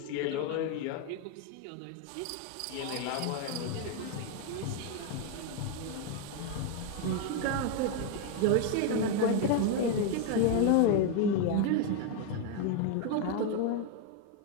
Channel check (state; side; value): different; both; correlation 0.01